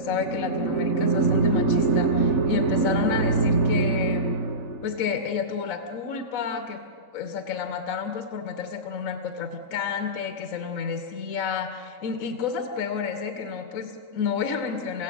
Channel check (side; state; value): right; late; 4.0 ms